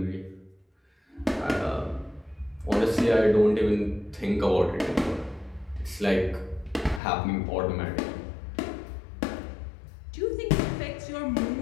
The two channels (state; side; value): drops out; right; at 7.0 s